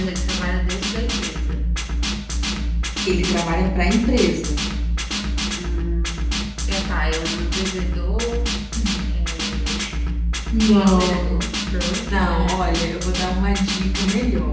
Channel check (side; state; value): both; identical; correlation 1.00